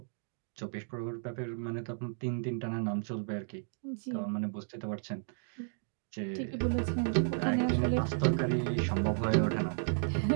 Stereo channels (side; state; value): left; silent; digital silence